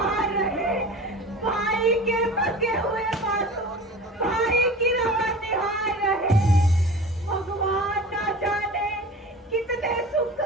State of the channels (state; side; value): normal; both; correlation 0.37